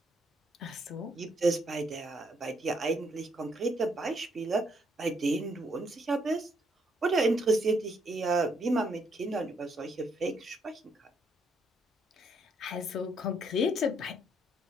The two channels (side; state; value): both; normal; correlation 0.72